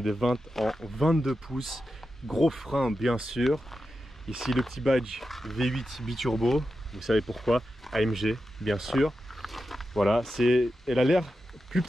des 20 en 22 pouces, gros frein bien sûr. Ici le petit badge V8 biturbo, vous savez pourquoi, AMG bien sûr. Voilà, elle a l'air plus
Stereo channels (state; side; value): normal; both; correlation 0.90